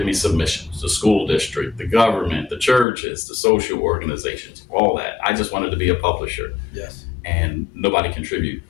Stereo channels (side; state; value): right; drops out; at 2.9 s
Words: me submissions. The school district, the government, the churches, the social organizations, all that. I just wanted to be a publisher. Yes. And nobody contribute